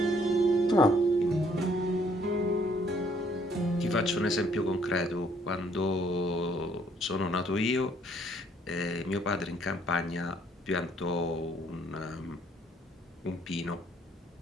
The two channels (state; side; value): normal; both; correlation 0.65